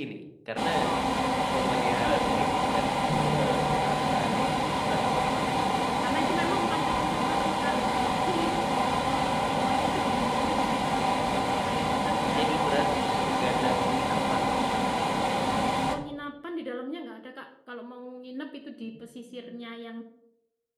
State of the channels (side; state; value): both; identical; correlation 1.00